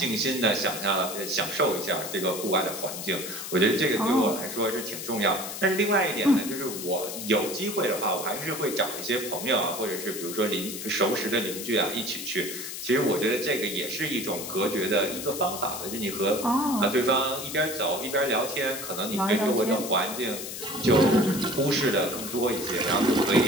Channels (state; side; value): noise; left; hiss, 8 dB below the sound